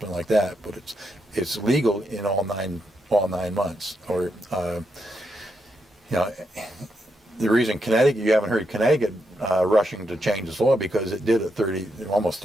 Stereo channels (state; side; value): normal; both; correlation 0.82